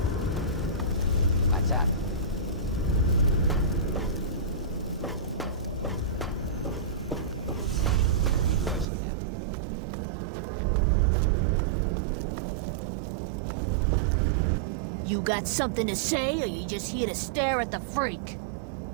What's up? You got something to say, or you just here to stare at the freak?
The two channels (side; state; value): left; drops out; at 8.8 s